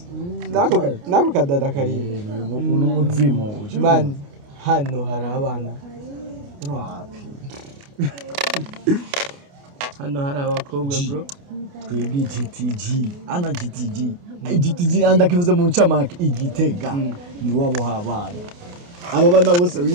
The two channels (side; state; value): left; late; 29 ms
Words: nako kadada kari n'umuzimu man hano hari abana wapi hano hari abakobwa bro twebwe GTG ana GTG andakivuze mu ncamake igitega ni wabo habana aba bana bose